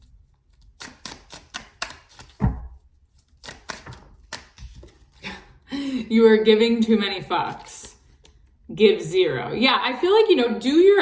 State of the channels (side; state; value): both; identical; correlation 1.00